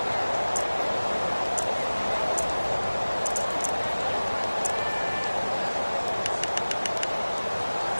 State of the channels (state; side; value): inverted; both; correlation -1.00